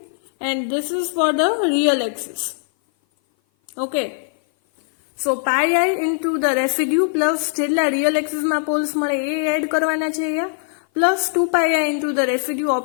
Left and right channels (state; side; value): silent; right; 56 dB below the other